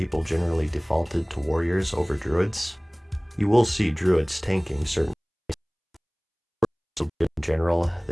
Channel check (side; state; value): both; identical; correlation 1.00